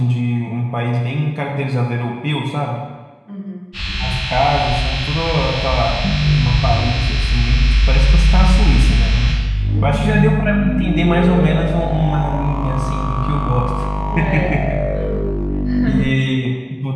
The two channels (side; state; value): both; identical; correlation 1.00